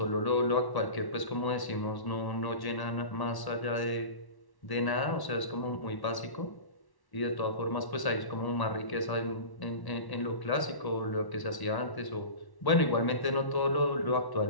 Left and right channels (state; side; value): late; right; 1.1 ms